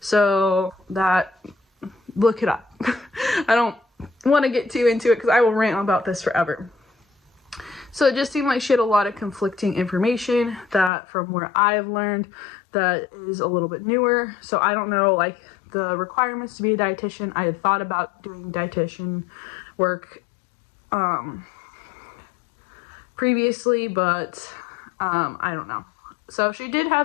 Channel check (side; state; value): right; drops out; at 10.9 s